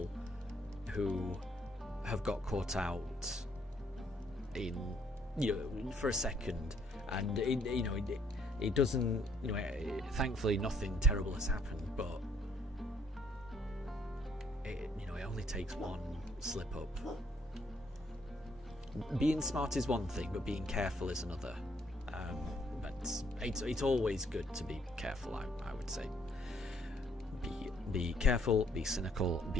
who have got caught out in, you know, for a second, and it doesn't, you know, thankfully nothing terrible has happened, but it only takes one slip up. Being smart is one thing, but being careful is another. But it's always good to be careful, I would say. Be careful, be cynical,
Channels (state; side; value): normal; both; correlation 0.67